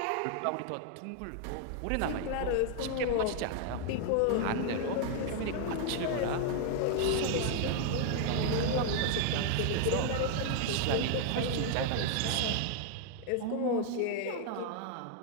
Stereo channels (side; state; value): both; different; correlation 0.00